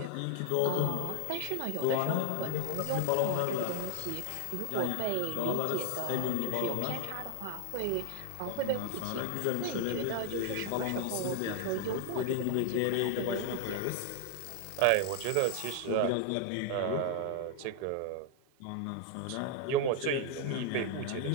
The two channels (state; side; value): different; both; correlation 0.01